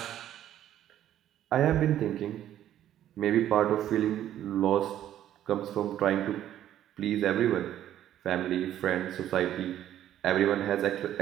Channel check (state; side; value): quieter; left; 11.7 dB